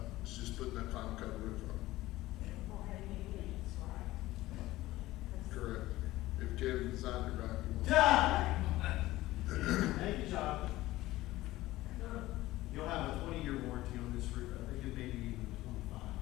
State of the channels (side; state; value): right; quieter; 17.1 dB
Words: It's just putting that final coat of roof on. Correct. If Kevin designed it right, he won't. Thank you, John. You'll have a 20-year warranty on this roof. I think it may be even